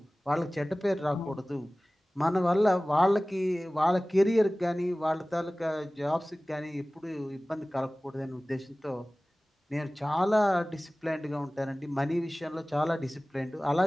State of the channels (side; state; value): both; normal; correlation 0.98